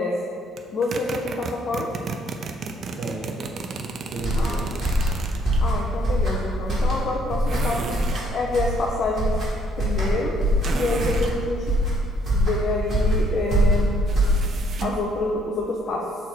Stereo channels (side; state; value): both; normal; correlation 0.67